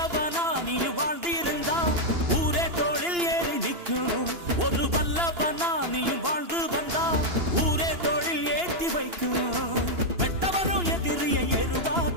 நீ வாழ்ந்திருந்தா ஊரே தோளில் ஏறி நிற்கும். ஒரு வல்லவனா நீயும் வாழ்ந்து வந்தா ஊரே தோளில் ஏற்றி வைக்கும். வெட்டவரும் எதிரியை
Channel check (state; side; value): late; left; 2.9 ms